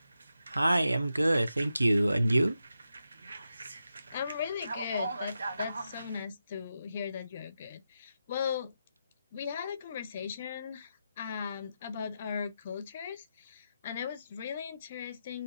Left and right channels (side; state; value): both; inverted; correlation -0.87